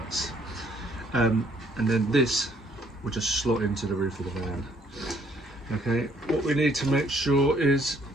And then this will just slot into the roof of the van. Okay, what we need to make sure is,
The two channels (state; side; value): normal; both; correlation 0.65